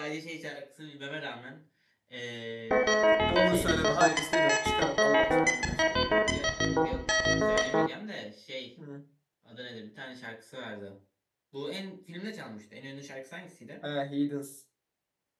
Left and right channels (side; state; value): both; identical; correlation 1.00